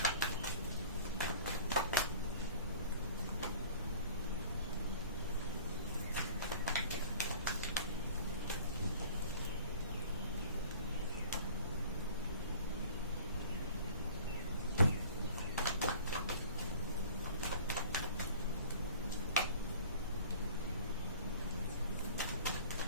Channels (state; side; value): inverted; both; correlation -0.46